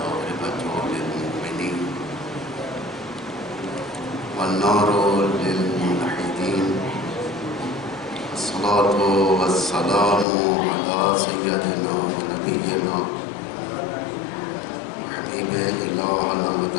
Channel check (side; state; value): right; drops out; at 10.2 s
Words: للمؤمنين والنار للموحدين الصلاة والسلام على سيدنا ونبينا وحبيب إلهنا